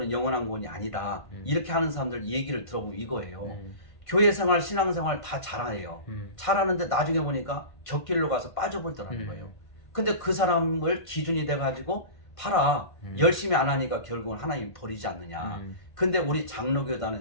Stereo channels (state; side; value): late; right; 1.5 ms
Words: 영원한 구원이 아니다. 이렇게 하는 사람들 얘기를 들어보면 이거예요. 교회 생활, 신앙 생활 다 잘해요. 잘하는데 나중에 보니까 격길로 가서 빠져버리더라는 거예요. 근데 그 사람을 기준이 돼가지고 봐라. 열심히 안 하니까 결국은 하나님이 버리지 않느냐. 근데 우리